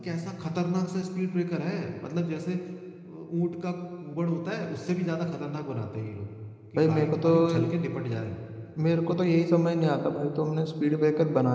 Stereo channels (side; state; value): both; identical; correlation 1.00